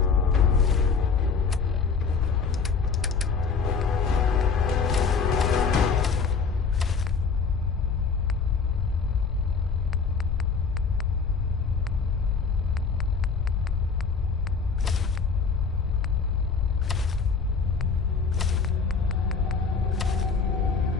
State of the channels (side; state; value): right; quieter; 5.3 dB